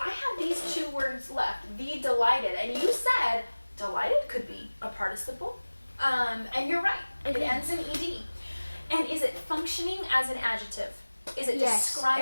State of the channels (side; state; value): both; inverted; correlation -1.00